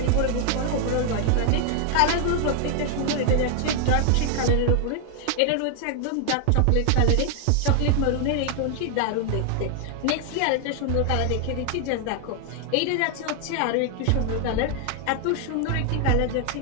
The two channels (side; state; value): both; different; correlation 0.00